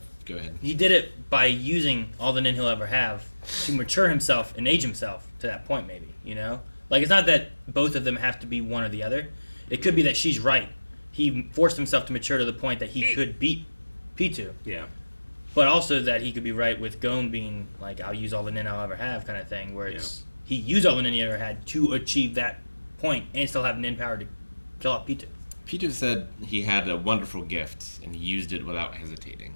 Go ahead. He did it by using all the nin he'll ever have to mature himself and age himself to that point, maybe, you know? Like, it's not that both of them have to be one or the other. It could be that she's right. He forced himself to mature to the point that he could beat P2. Yeah. But also that he could be right with Gon being like, I'll use all the nin I'll ever have kind of thing, where it's he used all the nin he ever had to achieve that point and still have nin power to kill out P2. Peter said he had a wonderful gift, and he used it without hesitating.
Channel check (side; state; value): both; inverted; correlation -1.00